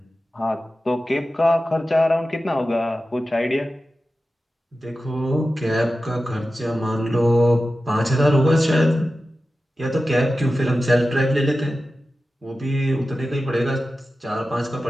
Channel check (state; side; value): normal; both; correlation 0.94